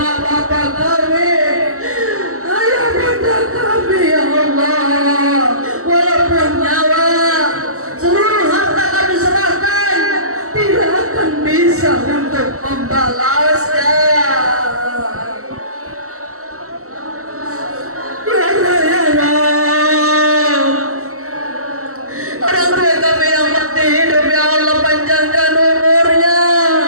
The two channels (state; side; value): late; left; 0.64 ms